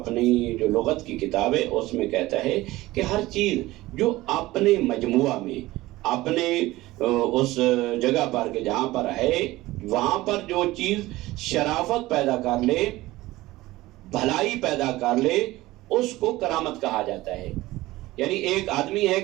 جو لغت کی کتاب ہے اس میں کہتا ہے کہ ہر چیز جو اپنے مجموعہ میں، اپنے اس جگہ پر کہ جہاں پر ہے، وہاں پر جو چیز شرافت پیدا کر لے، بھلائی پیدا کر لے، اس کو کرامت کہا جاتا ہے۔ یعنی ایک آدمی ہے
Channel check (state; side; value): quieter; left; 18.2 dB